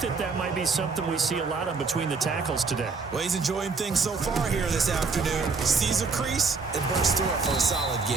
might be something we see a lot of between the tackles today. Well, he's enjoying things so far here this afternoon. Sees a crease and bursts through it for a solid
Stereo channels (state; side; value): quieter; left; 4.5 dB